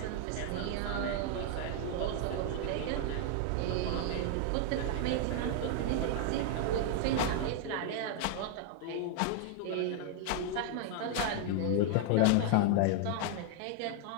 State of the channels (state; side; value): different; both; correlation 0.00